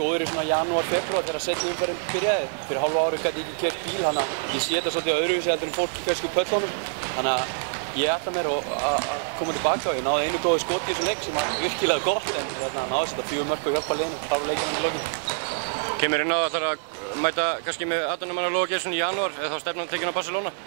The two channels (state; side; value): silent; left; digital silence